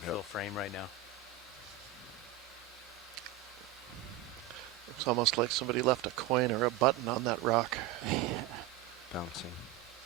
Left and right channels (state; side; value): quieter; left; 11.6 dB